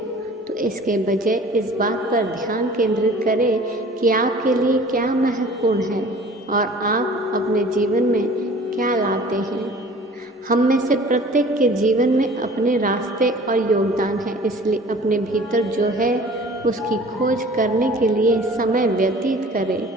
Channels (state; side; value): normal; both; correlation 0.47